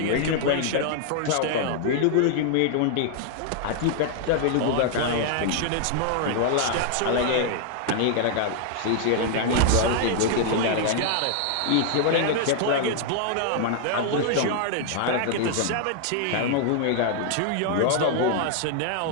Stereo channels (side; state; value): both; different; correlation 0.00